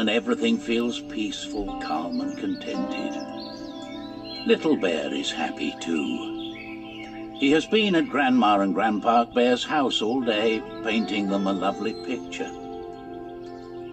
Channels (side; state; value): both; identical; correlation 1.00